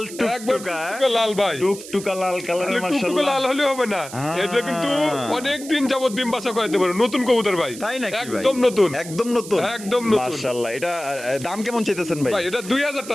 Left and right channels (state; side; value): noise; right; hiss, 14 dB below the sound